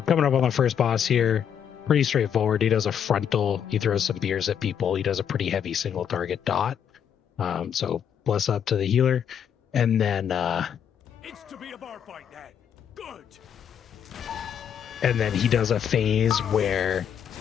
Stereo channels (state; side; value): quieter; right; 8.4 dB